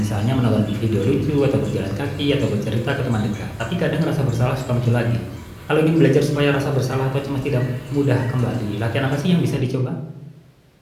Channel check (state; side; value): identical; both; correlation 1.00